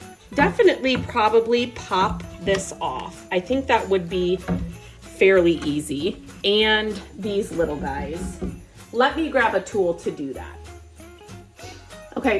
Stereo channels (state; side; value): identical; both; correlation 1.00